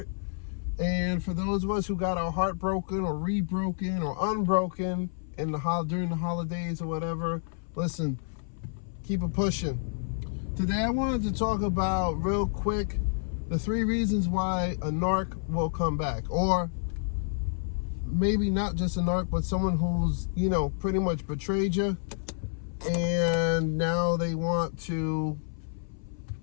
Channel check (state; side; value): silent; right; 58 dB below the other